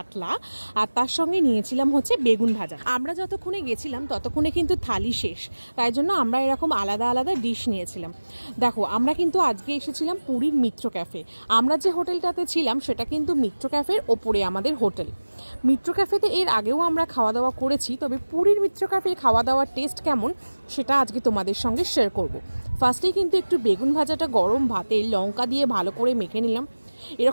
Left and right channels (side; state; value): both; inverted; correlation -1.00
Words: আর তার সঙ্গে নিয়েছিলাম হচ্ছে বেগুন ভাজা। আমরা যতক্ষণে গেছিলাম ততক্ষণে কিন্তু থালি শেষ, তাই জন্য আমরা এরকম আলাদা আলাদা ডিশ নিয়েছিলাম। দেখো, আমরা কিন্তু আজকে এসেছিলাম পুরীর মিত্র ক্যাফে। আমরা যে হোটেলটাতে ছিলাম সেটা কিন্তু মিত্র ক্যাফের ওপরে আমাদের হোটেল। মিত্র ক্যাফেতে এর আগেও আমরা খাওয়া দাওয়া করেছি, তবে পুরীর মিত্র ক্যাফে খাওয়া দাওয়ার টেস্ট কেমন সেটা আজকে তোমাদের সঙ্গে শেয়ার করব। ফার্স্টেই কিন্তু একটু বেগুন ভাজাটা গরম ভাতে লঙ্কা দিয়ে ভালো করে মেখে নিলাম।